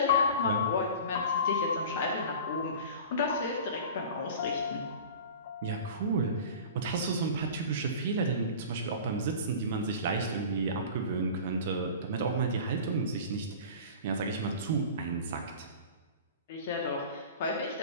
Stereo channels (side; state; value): both; inverted; correlation -0.37